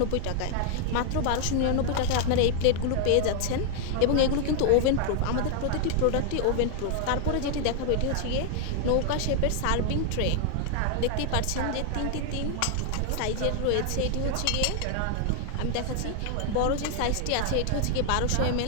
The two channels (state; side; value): different; both; correlation 0.00